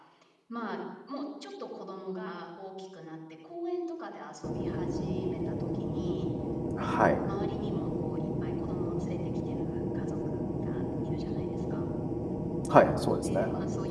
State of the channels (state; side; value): identical; both; correlation 1.00